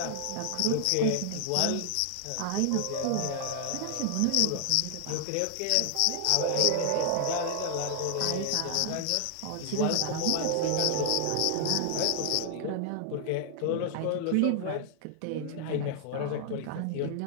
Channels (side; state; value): both; different; correlation 0.00